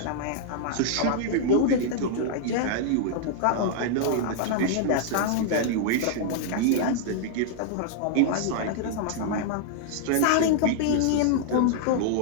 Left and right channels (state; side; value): different; both; correlation -0.01